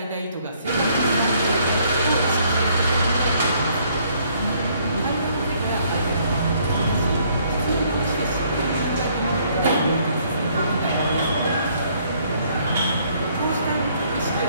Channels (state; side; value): inverted; both; correlation -0.65